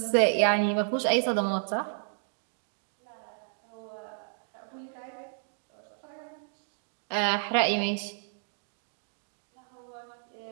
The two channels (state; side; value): silent; left; digital silence